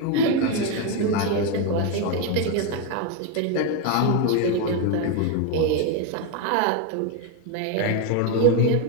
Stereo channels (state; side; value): different; both; correlation 0.02